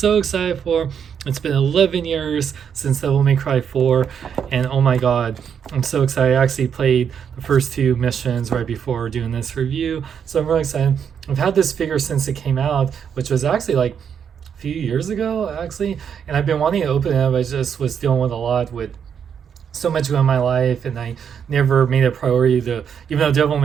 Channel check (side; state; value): left; quieter; 7.7 dB